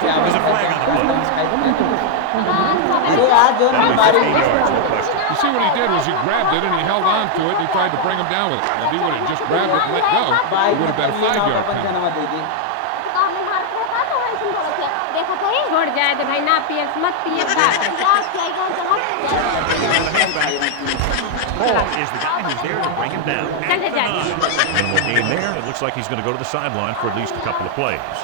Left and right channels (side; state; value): both; different; correlation 0.00